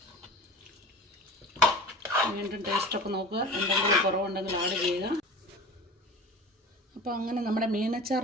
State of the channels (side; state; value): both; normal; correlation 0.36